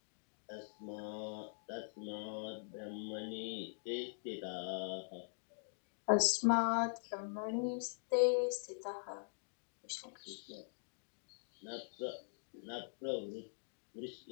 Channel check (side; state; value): right; silent; digital silence